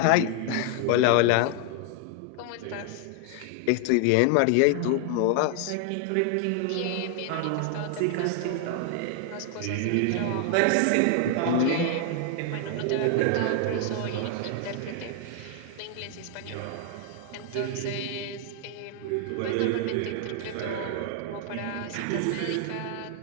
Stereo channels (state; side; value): different; both; correlation 0.00